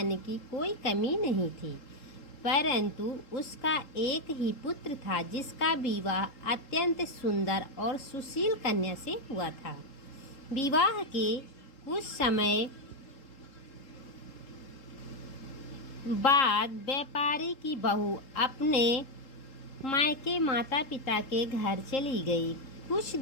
की कोई कमी नहीं थी, परंतु उसका एक ही पुत्र था जिसका विवाह अत्यंत सुंदर और सुशील कन्या से हुआ था। विवाह के कुछ समय बाद व्यापारी की बहू अपने मायके माता पिता के घर चली गई। कुछ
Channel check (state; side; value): late; right; 3.8 ms